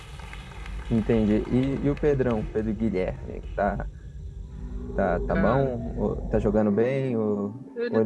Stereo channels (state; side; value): identical; both; correlation 1.00